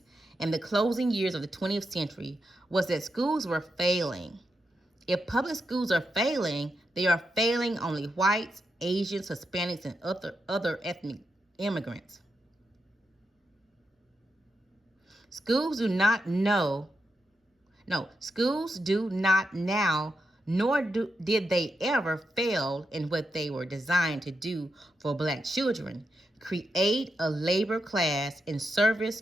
in the closing years of the 20th century was that schools were failing. If public schools are failing, they are failing only whites, Asians, Hispanics, and other ethnic immigrants. Schools do not now, nor did they ever fail in what they were designed to do for black children: create a labor class in service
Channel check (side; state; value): both; normal; correlation 0.85